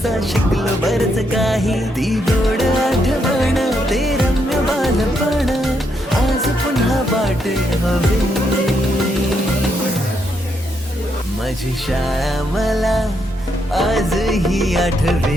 शिकलो बरच काही ती गोड आठवण ते रम्य बालपण आज पुन्हा वाटे हवे माझी शाळा मला आजही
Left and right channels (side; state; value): both; normal; correlation 0.78